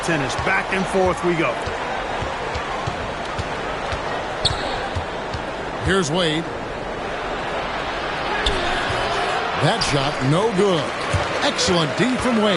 tennis. Back and forth we go. Here's Wade. That shot, no good. Excellent D from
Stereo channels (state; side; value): identical; both; correlation 1.00